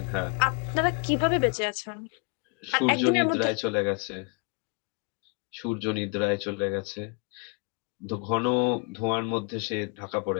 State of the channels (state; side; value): quieter; right; 32.3 dB